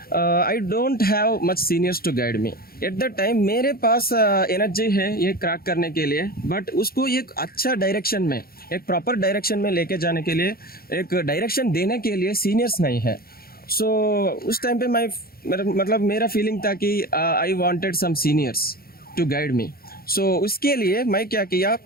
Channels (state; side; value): late; right; 0.44 ms